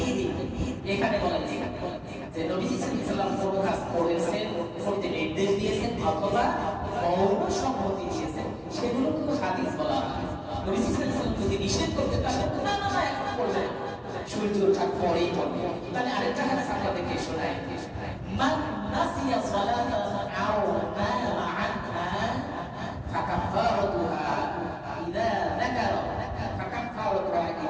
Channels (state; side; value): identical; both; correlation 1.00